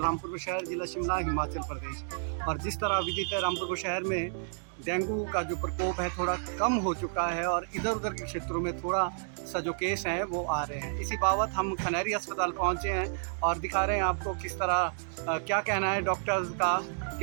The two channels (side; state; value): left; silent; digital silence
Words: रामपुर शहर, जिला शिमला, हिमाचल प्रदेश। और जिस तरह विदित है, रामपुर शहर में डेंगू का जो प्रकोप है थोड़ा कम हो चुका है और इधर उधर के क्षेत्रों में थोड़ा सा जो केस हैं वो आ रहे हैं। इसी बाबत हम खनहरी अस्पताल पहुँचे हैं और दिखा रहे हैं आपको किस तरह क्या कहना है डॉक्टर्स का